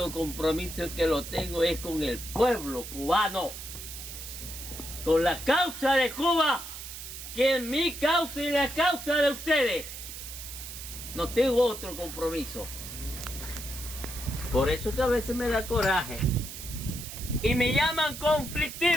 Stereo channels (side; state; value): right; noise; hiss, 10 dB below the sound